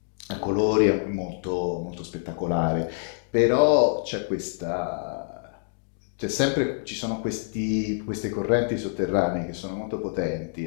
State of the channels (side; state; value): right; silent; digital silence